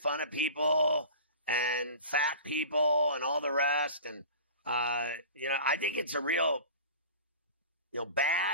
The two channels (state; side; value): inverted; both; correlation -0.39